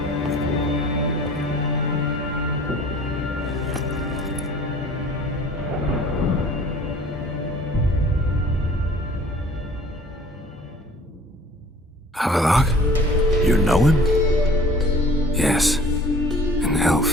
Avalok? You know him? Yes. An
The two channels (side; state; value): both; normal; correlation 0.49